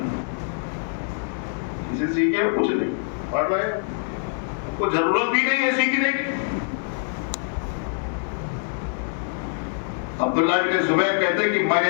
کسی سے سیکھے کچھ نہیں، پڑھ رہے کو ضرورت بھی نہیں ہے سیکھنے کی. عبداللہ بن زبیر کہتے کہ میں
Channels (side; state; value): right; silent; digital silence